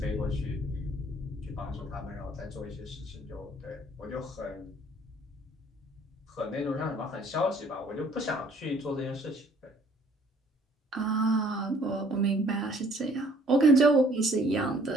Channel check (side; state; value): both; normal; correlation 0.59